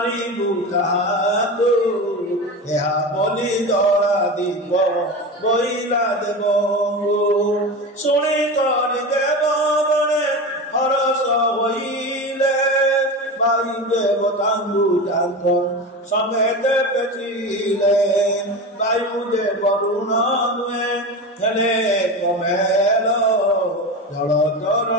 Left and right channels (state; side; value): normal; both; correlation 0.25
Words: ତାହାକୁ ଏହା ବୋଲି ଦଳା দিব বইলা দেব শুনি করি দেব বনে হরস হইলে ভাই দেবতাঙ্গু তাঙ্গ সমেতে পেচিলে বায়ু দে বরুণ নুয়ে হেলে কমেল জল